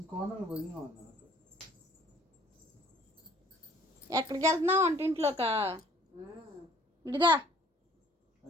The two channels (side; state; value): both; normal; correlation 0.57